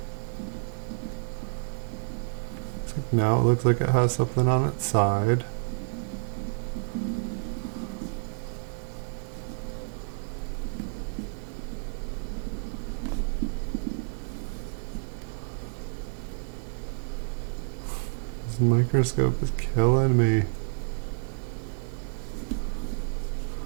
now it looks like it has something on its side. This microscope is killing me.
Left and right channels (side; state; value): left; silent; digital silence